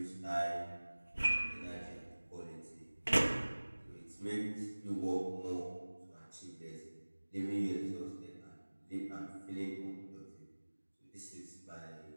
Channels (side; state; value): both; inverted; correlation -1.00